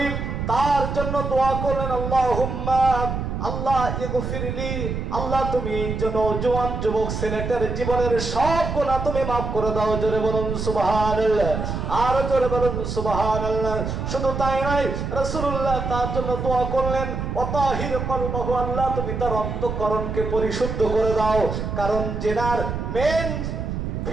তার জন্য দোয়া করলেন, আল্লাহুম্মা, আল্লাহ ইগফিরলি, আল্লাহ তুমি জওয়ান যুবক ছেলেটার জীবনের সব গুনাহ তুমি মাফ করে দাও। জোরে বলুন সুবহানাল্লাহ, আর জোরে বলুন সুবহানাল্লাহ। শুধু তাই নয়, রাসূলুল্লাহ তার জন্য দোয়া করলেন, ওয়াতাহির কলবাহু, আল্লাহ তুমি তার অন্তঃকরণকে পরিশুদ্ধ করে দাও। কারণ জেনার মেন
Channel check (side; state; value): right; noise; rumble, 4 dB below the sound